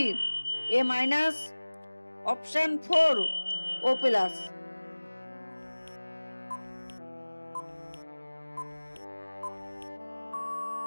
A minus, option 4 O plus.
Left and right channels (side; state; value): both; inverted; correlation -1.00